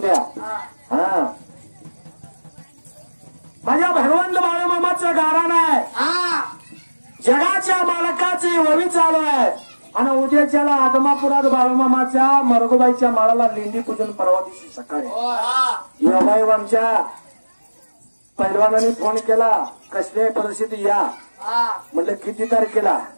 हा माझ्या भगवंत बाळूमामाचं गारण आहे. जगाच्या मालकाची ववी चालू आहे. आणि उद्याच्याला आदमापुरात बाळूमामाच्या मरगोबाईच्या माळाला लेंडी पूजन परवा दिवशी सकाळी. योगायोग आमच्या पैलवानाने फोन केला कसल्या परिस्थिती या. म्हटलं किती तारखेला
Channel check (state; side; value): inverted; both; correlation -1.00